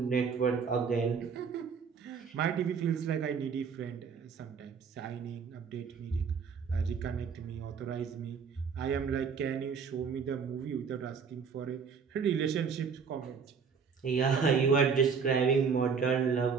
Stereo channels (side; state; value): left; quieter; 6.0 dB